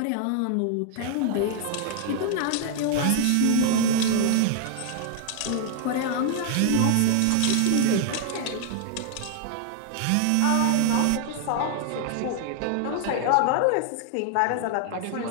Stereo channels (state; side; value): different; both; correlation 0.00